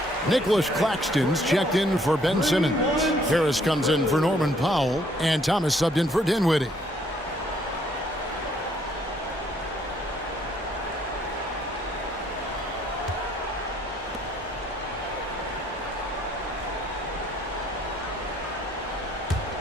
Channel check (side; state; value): both; normal; correlation 0.65